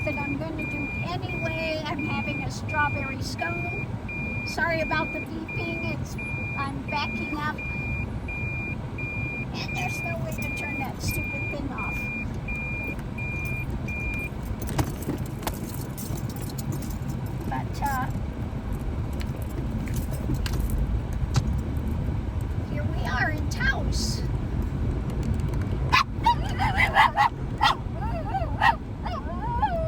that I'm going to do anyway. I'm having a strawberry scone. Sorry about the beeping, I'm backing up. And there's no way to turn that stupid thing off. But here we are in Taos.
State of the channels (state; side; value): identical; both; correlation 1.00